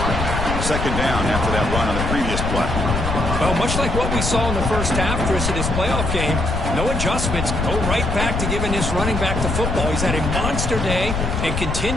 Second down after that run on the previous play. Well, much like what we saw in the first half, Chris, of this playoff game, no adjustments. Go right back to giving this running back the football. He's had a monster day and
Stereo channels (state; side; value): noise; left; rumble, 2 dB below the sound